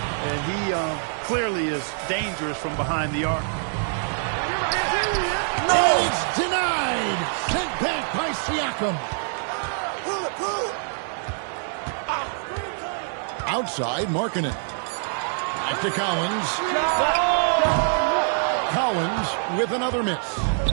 and he clearly is dangerous from behind the arc. No, it's denied. Sent back by Siakam. Outside, Markkanen. Back to Collins. Collins with another miss.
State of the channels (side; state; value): left; silent; 62 dB below the other